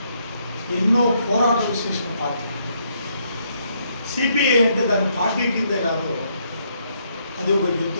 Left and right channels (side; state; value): both; inverted; correlation -0.73